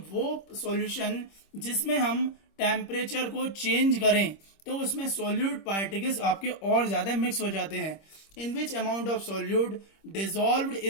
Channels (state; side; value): late; right; 26 ms